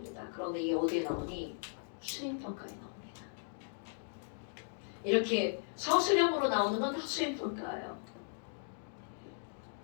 그런데 이게 어디에 나오니? 수행평가에 나옵니다. 이렇게 서술형으로 나오는 건 다 수행평가예요.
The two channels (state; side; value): silent; right; digital silence